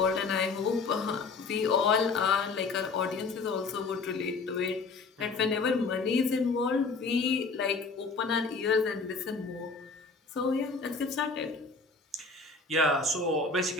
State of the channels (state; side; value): quieter; right; 4.2 dB